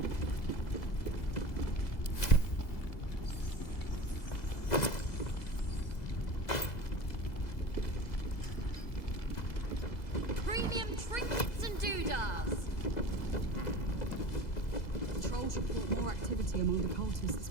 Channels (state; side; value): late; right; 2.0 ms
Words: Premium trinkets and doodahs. Patrols report more activity among the cultists,